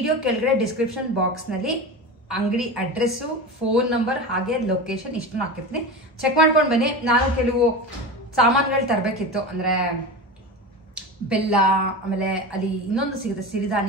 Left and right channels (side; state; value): both; normal; correlation 0.26